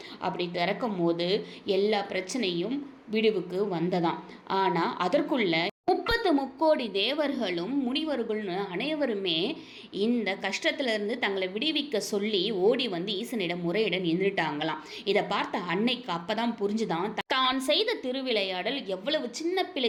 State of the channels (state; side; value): identical; both; correlation 1.00